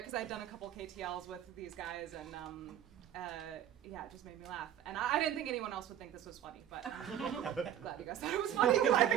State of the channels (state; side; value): quieter; left; 10.6 dB